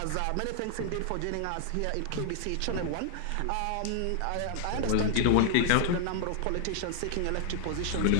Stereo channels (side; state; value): both; different; correlation 0.00